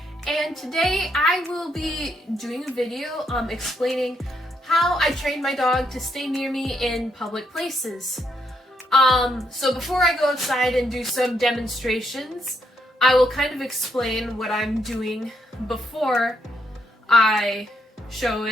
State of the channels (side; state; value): both; normal; correlation 0.77